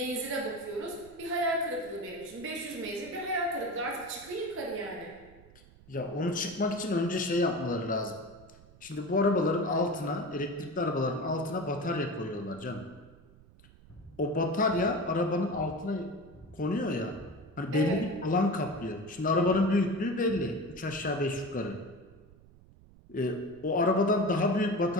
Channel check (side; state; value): right; noise; rumble, 24 dB below the sound